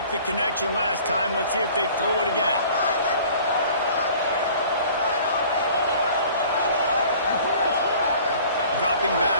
the connection last time. Let's see if they throw it again. Dropping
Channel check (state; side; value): inverted; both; correlation -0.49